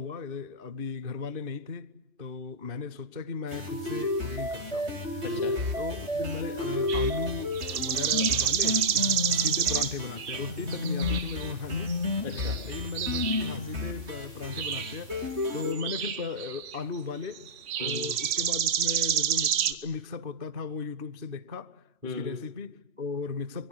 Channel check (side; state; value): left; late; 3.2 ms